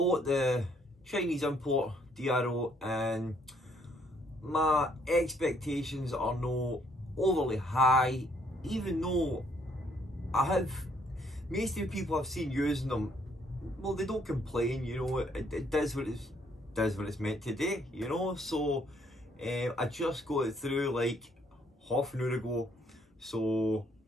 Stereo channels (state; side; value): normal; both; correlation 0.67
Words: the Chinese import DRO and my expectations are not overly high, even though I have, most of the people I've seen using them, well, they don't complain, you know, it does what it's meant to do, you know. So I just got it through like half an hour ago, so